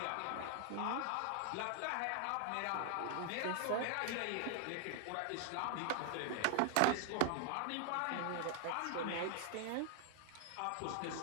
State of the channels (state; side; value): different; both; correlation 0.00